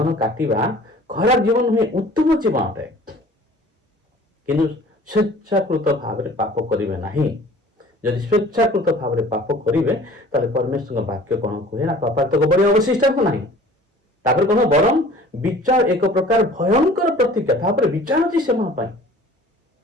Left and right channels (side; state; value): both; normal; correlation 0.48